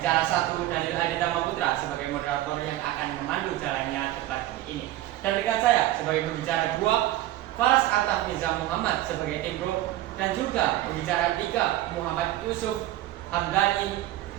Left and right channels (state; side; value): quieter; left; 14.9 dB